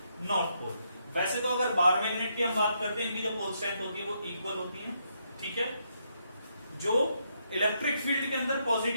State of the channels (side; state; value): both; inverted; correlation -0.77